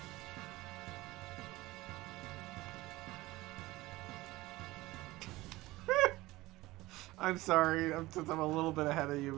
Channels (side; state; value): left; quieter; 19.0 dB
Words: I'm sorry, since I'm a little bit ahead of you,